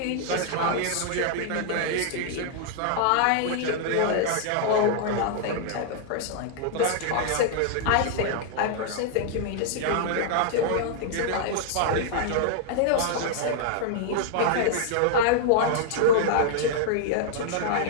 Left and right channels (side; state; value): both; different; correlation -0.01